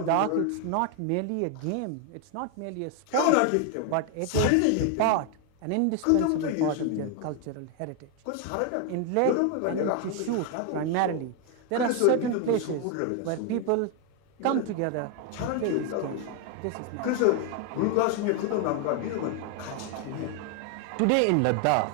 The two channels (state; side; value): different; both; correlation 0.01